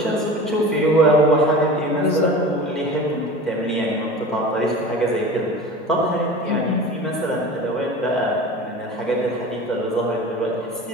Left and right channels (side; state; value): both; normal; correlation 0.35